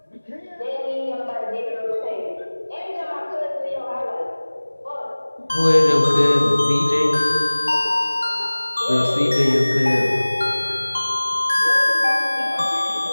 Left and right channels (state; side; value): inverted; both; correlation -1.00